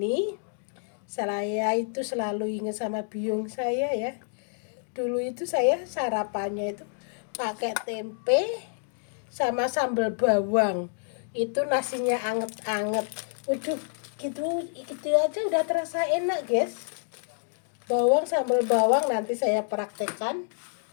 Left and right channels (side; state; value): right; silent; digital silence